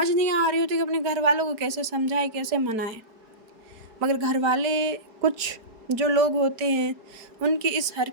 नहीं आ रही होती कि अपने घर वालों को कैसे समझाए, कैसे मनाए। मगर घर वाले कुछ जो लोग होते हैं उनकी इस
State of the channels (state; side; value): late; left; 4.7 ms